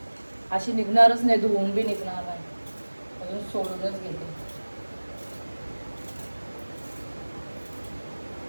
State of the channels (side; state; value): both; inverted; correlation -1.00